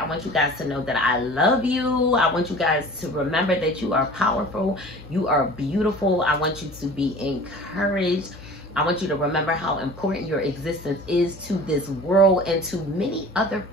I want you guys to know that I love you. I want you guys to remember that you are powerful. You are beautiful. I want you to be encouraged. I want you to remember how important your existence is to this world and to many other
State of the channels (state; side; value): normal; both; correlation 0.42